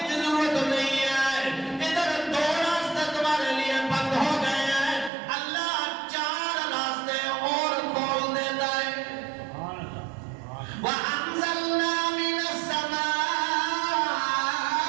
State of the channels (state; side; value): drops out; left; at 5.1 s